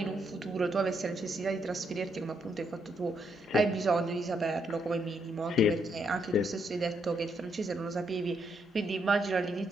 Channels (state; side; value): normal; both; correlation 0.76